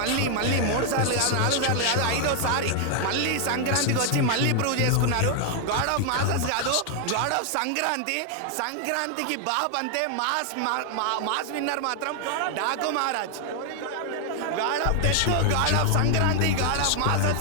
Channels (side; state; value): both; different; correlation 0.00